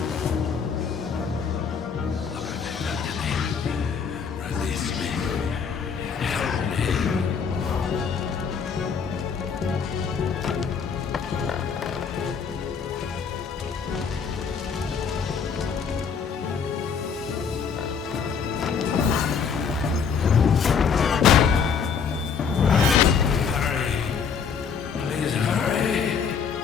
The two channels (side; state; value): right; quieter; 6.3 dB